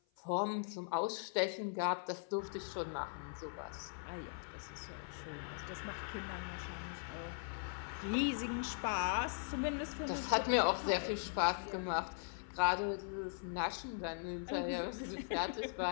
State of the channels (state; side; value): silent; right; 51 dB below the other